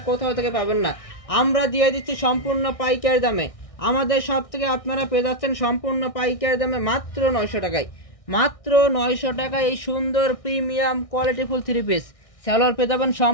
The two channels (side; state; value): right; late; 1.6 ms